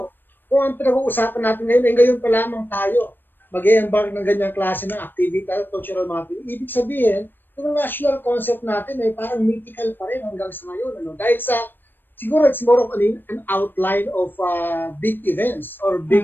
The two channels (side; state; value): right; late; 0.095 ms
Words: kung ang pinag-uusapan natin ngayon pa lamang tayo mag-embark ng ganyang klase ng activity, cultural mapping. Ibig sabihin, yung national concept natin ay parang mythical pa rin hanggang sa ngayon. Ano? Dahil siguro it's more of an outline of big events or